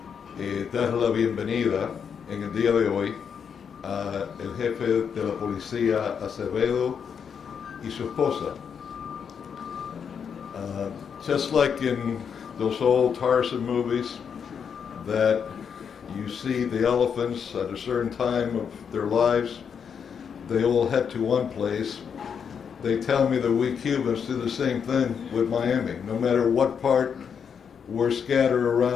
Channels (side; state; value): right; quieter; 7.0 dB